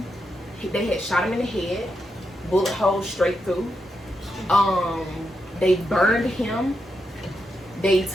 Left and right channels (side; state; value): both; normal; correlation 0.84